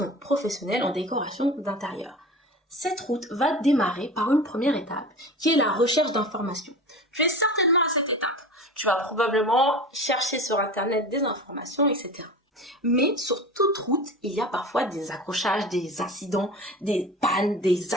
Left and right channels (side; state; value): both; normal; correlation 0.33